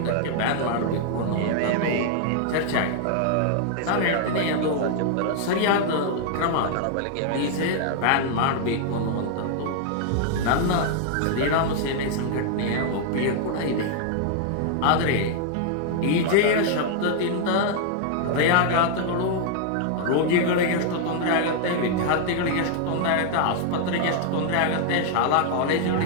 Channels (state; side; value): different; both; correlation 0.00